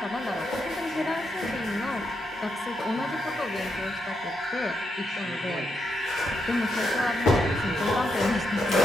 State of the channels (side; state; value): both; normal; correlation 0.81